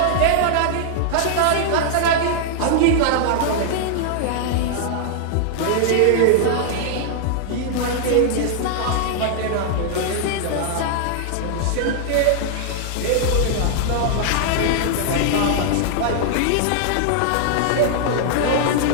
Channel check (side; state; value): both; different; correlation -0.01